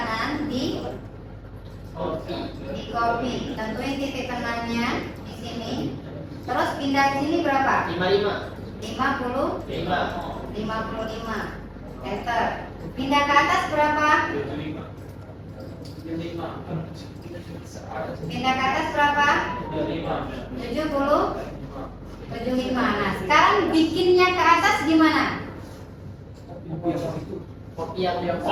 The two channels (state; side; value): identical; both; correlation 1.00